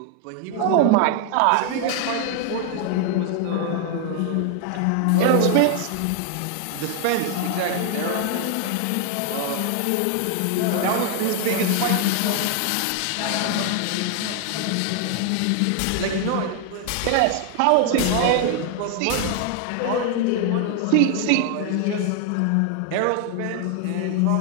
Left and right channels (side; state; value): both; different; correlation 0.00